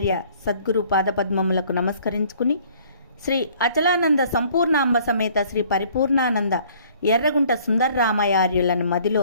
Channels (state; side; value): inverted; both; correlation -0.57